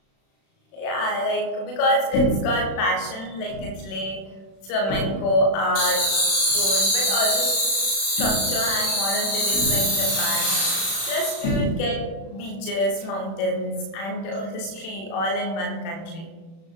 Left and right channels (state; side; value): late; right; 36 ms